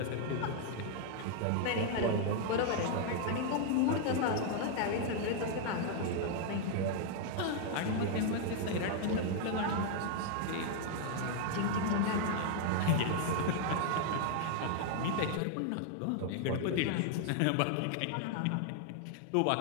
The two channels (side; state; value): both; different; correlation 0.00